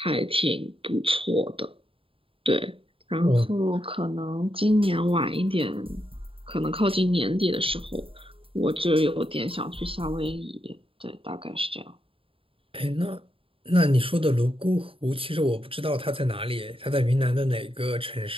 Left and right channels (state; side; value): late; left; 0.26 ms